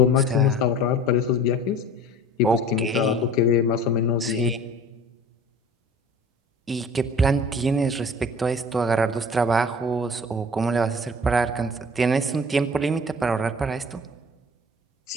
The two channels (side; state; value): both; normal; correlation 0.44